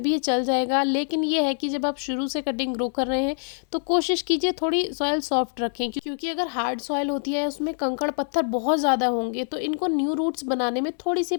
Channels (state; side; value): silent; right; digital silence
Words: भी ये चल जाएगा। लेकिन ये है कि जब आप शुरू से कटिंग ग्रो कर रहे हैं तो कोशिश कीजिए थोड़ी सॉइल सॉफ्ट रखें, क्योंकि अगर हार्ड सॉइल होती है उसमें कंकड़ पत्थर बहुत ज़्यादा होंगे, तो इनको न्यू रूट्स बनाने में थोड़ी सी